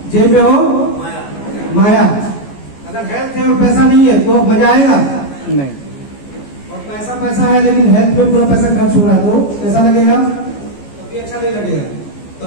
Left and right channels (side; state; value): right; late; 14 ms